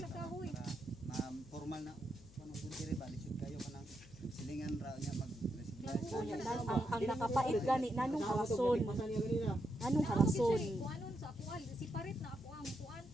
kahoy. Para formal na kanang bundiri ba lisod kayo kanang silingan ra nya mag Ang nakapait gani nanong harason. Pasan niya ganina. Nanong harason. Kuanon sa akuan siparet na ako ang kuan.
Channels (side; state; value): left; noise; hum, 20 dB below the sound